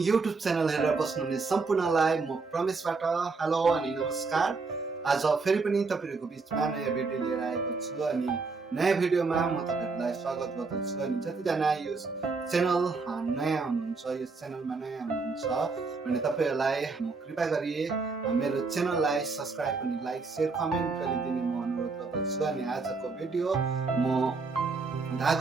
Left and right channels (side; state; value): left; quieter; 4.2 dB